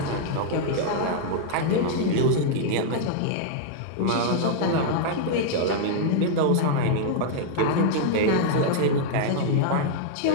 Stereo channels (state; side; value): different; both; correlation -0.01